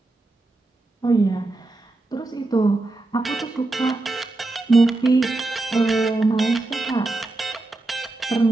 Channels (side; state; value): left; quieter; 3.1 dB